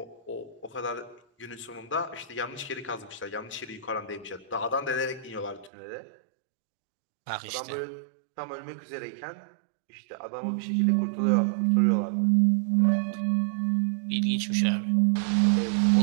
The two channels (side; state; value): left; drops out; at 5.7 s